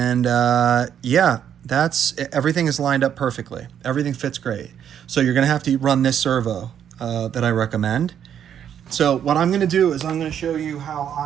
yeah, everything is lined up perfectly. Everything fits great. So you're gonna have to run this servo that I recommend. So what I'm gonna do is I'm gonna show you how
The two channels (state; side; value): quieter; left; 9.1 dB